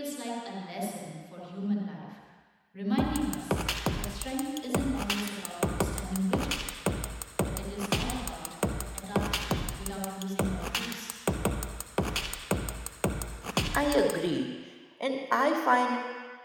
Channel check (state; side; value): identical; both; correlation 1.00